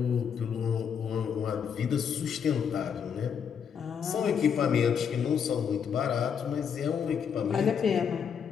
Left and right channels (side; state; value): right; quieter; 7.3 dB